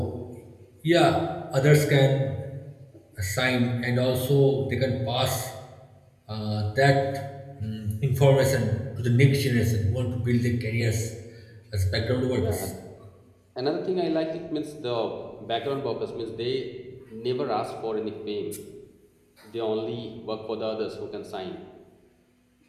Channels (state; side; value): identical; both; correlation 1.00